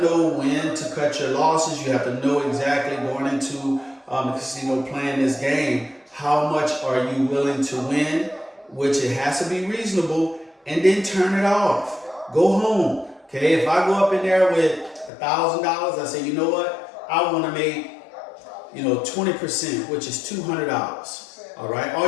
know when to cut your losses. You have to know exactly going into the casino playing this game, how much are you willing to win, which it has to be reasonable, and then turn it off. Go home, okay? If I go up in there with $1,000, I say, you know what? I want to make, 20%, which is $200. All right?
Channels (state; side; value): drops out; right; at 15.1 s